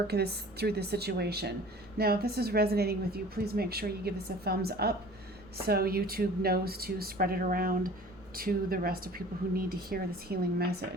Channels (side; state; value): right; noise; rumble, 23 dB below the sound